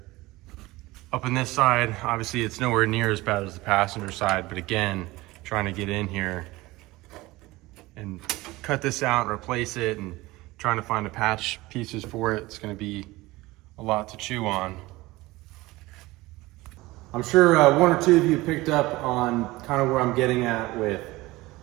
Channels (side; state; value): left; quieter; 20.0 dB